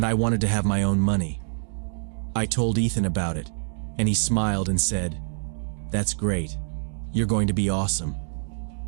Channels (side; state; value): left; silent; digital silence